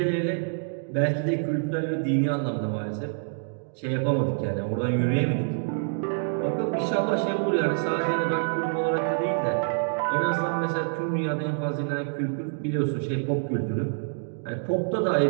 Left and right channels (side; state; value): left; silent; digital silence